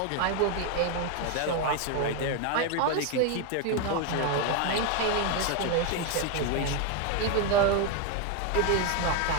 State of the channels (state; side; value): different; both; correlation 0.01